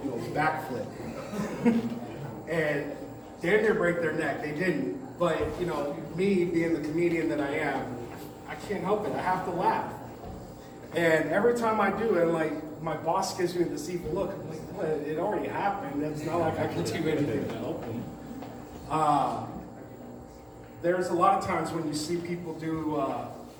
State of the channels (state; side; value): identical; both; correlation 1.00